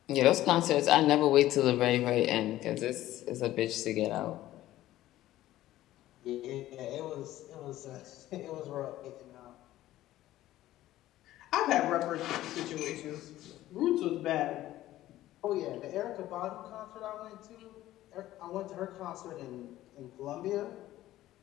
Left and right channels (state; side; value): quieter; right; 14.7 dB